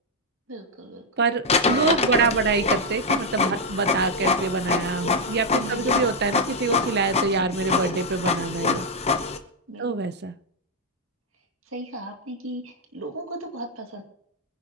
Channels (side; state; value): both; normal; correlation -0.01